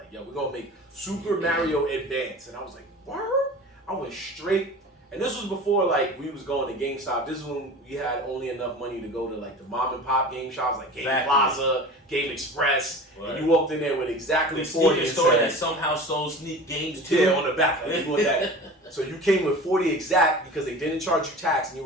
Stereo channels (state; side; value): normal; both; correlation 0.37